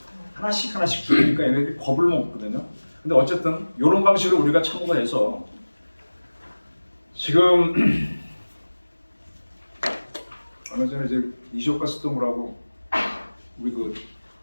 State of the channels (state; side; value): inverted; both; correlation -1.00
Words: 하나씩 죽이니까 얘네들이 겁을 먹거든요. 근데 어쨌든 이런 방식으로 우리가 참고가 해서 지금 얼마 전에 이제 이시오카 스토무라고 우리 그